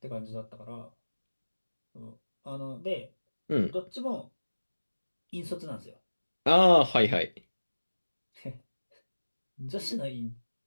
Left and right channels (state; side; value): inverted; both; correlation -1.00